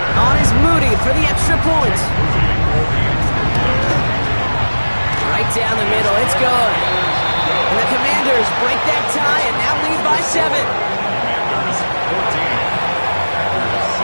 On is Moody for the extra point. Right down the middle, it's good. And the Commanders break that tie and now lead by 7.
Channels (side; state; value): both; inverted; correlation -1.00